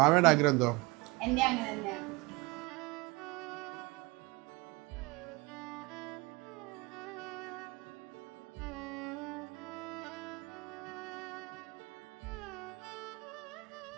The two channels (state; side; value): quieter; left; 24.8 dB